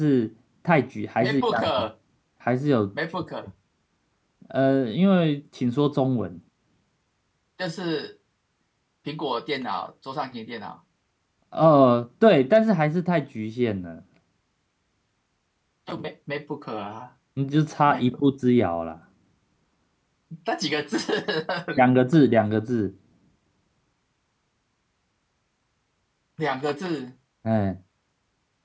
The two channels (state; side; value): identical; both; correlation 1.00